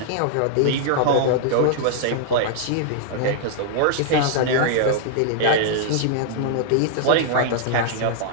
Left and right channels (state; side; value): different; both; correlation -0.01